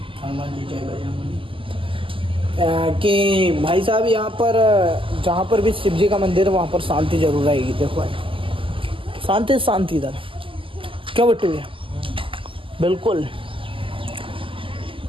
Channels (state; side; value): late; left; 0.25 ms